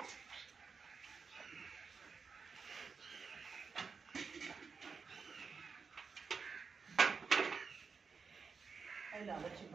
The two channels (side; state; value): left; quieter; 5.3 dB